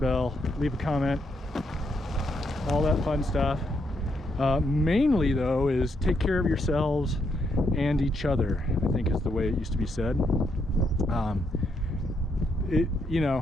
leave a comment, all that fun stuff. Mainly though is take care of yourselves and each other, I think is the way it used to be said. You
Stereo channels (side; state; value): both; normal; correlation 0.77